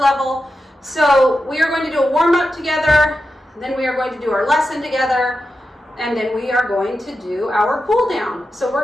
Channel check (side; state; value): both; normal; correlation 0.90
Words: So we are going to do a warm-up together, then we are going to do our lesson together, and then we are going to do our cool down. So we're